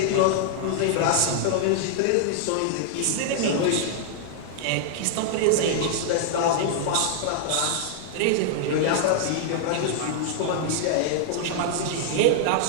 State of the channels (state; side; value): different; both; correlation -0.01